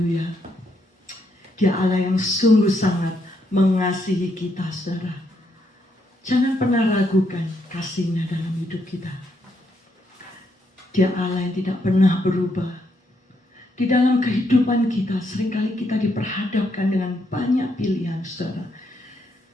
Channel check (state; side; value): normal; both; correlation 0.76